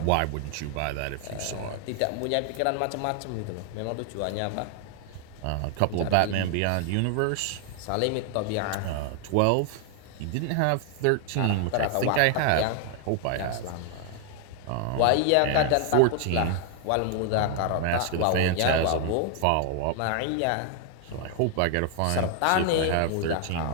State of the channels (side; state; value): both; different; correlation 0.00